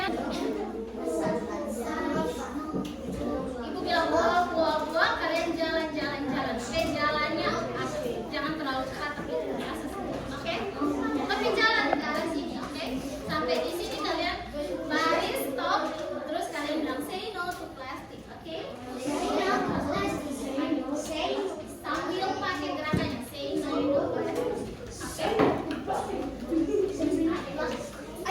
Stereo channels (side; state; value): both; identical; correlation 1.00